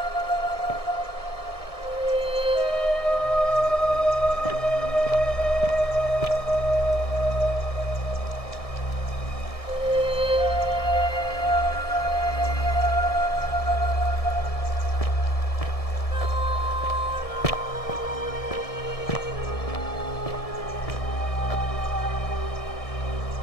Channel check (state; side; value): late; right; 1.7 ms